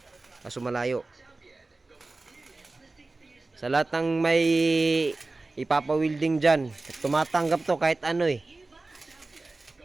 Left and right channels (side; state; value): left; quieter; 3.3 dB